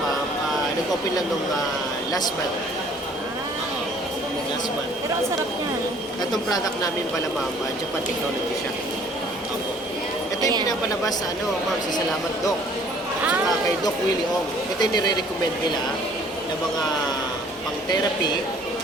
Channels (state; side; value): normal; both; correlation 0.56